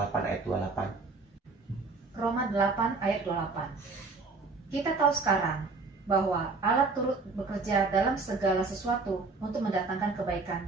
8 ayat 28. Roma 8 ayat 28. Kita tahu sekarang bahwa Allah turut bekerja dalam segala sesuatu untuk mendatangkan kebaikan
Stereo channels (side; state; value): left; quieter; 4.0 dB